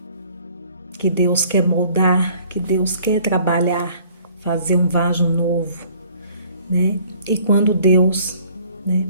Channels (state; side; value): inverted; both; correlation -0.56